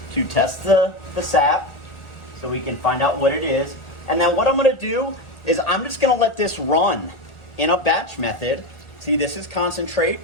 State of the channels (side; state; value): right; late; 1.4 ms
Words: to test the sap so we can find out what it is. And then what I'm going to do is I'm just going to let this run in a batch method. See, this is concentrate